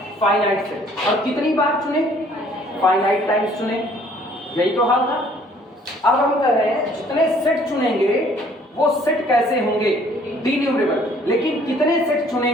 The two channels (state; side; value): normal; both; correlation 0.59